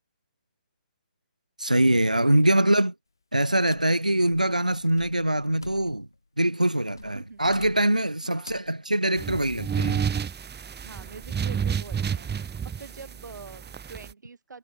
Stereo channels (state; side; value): inverted; both; correlation -0.74